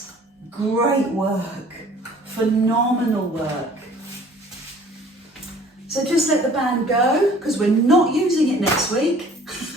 Great work, phenomenal work. So just let the band go because we're not using it next week.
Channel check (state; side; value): normal; both; correlation 0.52